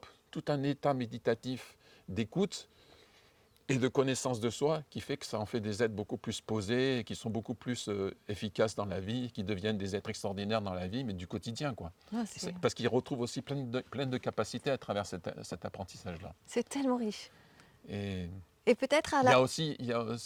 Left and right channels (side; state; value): both; identical; correlation 1.00